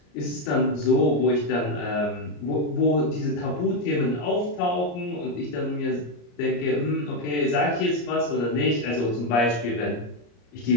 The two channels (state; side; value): late; right; 34 ms